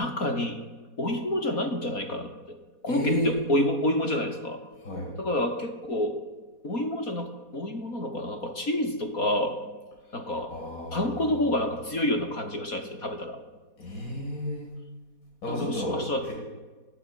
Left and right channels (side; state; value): right; late; 4.2 ms